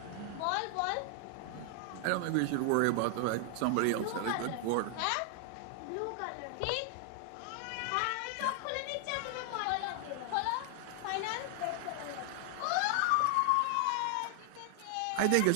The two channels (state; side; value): different; both; correlation 0.00